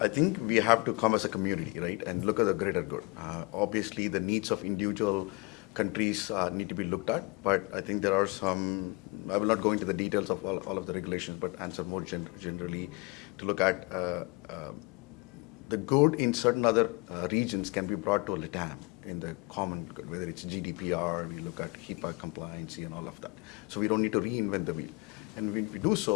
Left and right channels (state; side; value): quieter; right; 26.7 dB